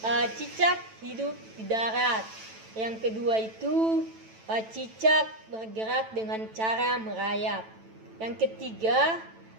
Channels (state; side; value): late; left; 9.1 ms